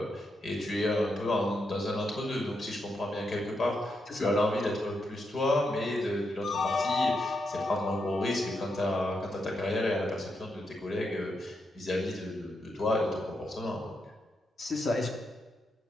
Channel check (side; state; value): both; normal; correlation 0.83